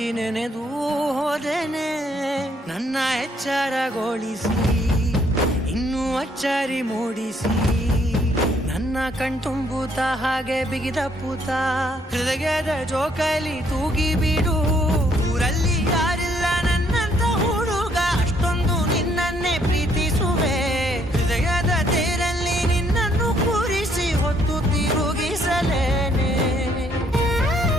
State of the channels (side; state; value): both; normal; correlation 0.68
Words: ನೆನೆದು ಹೋದೆನೆ. ನನ್ನ ಎಚ್ಚರಗೊಳಿಸಿ ಇನ್ನೂ ಅಚ್ಚರಿ ಮೂಡಿಸಿ, ನನ್ನ ಕಣ್ತುಂಬುತ್ತ ಹಾಗೆ ಬಿಗಿದ ಪೂತ ಹೃದಯದ ಜೋಕಾಲಿ ತೂಗಿ ಬಿಡು. ಊರಲ್ಲಿ ಯಾರಿಲ್ಲ ನನ್ನಂತ ಹುಡುಗ, ಅಷ್ಟೊಂದು ನಿನ್ನನ್ನೇ ಪ್ರೀತಿಸುವೆ. ಹೃದಯದ ತೇರಲ್ಲಿ ನಿನ್ನನ್ನು ಕೂರಿಸಿ ಹೊತ್ತು ತಿರುಗಿಸಲೇನೆ.